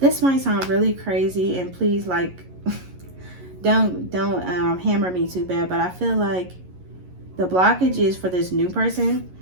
might sound really crazy, and please, like, don't hammer me too bad, but I feel like the blockage is for this new person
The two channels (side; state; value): left; late; 11 ms